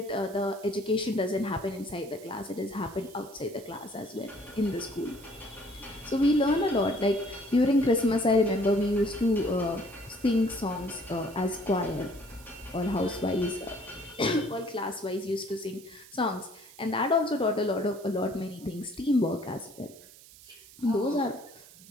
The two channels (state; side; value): noise; right; hiss, 21 dB below the sound